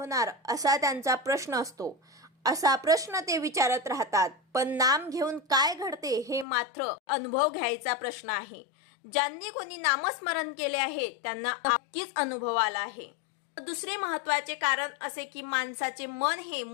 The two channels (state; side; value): drops out; right; at 6.5 s